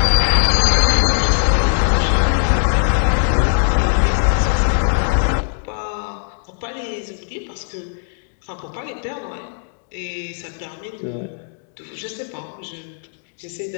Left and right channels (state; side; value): silent; right; digital silence